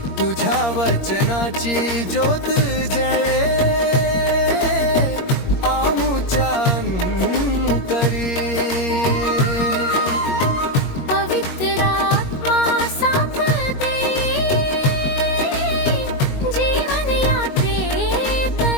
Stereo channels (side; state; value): right; late; 21 ms